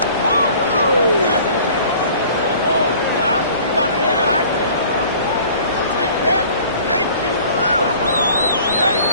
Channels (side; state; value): both; inverted; correlation -0.49